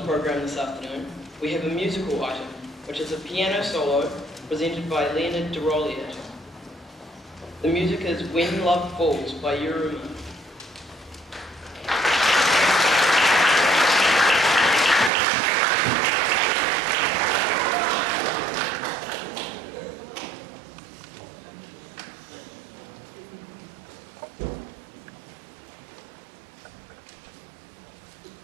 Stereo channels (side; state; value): left; drops out; at 15.1 s